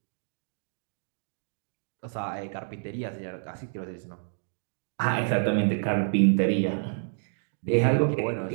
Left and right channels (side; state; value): left; silent; digital silence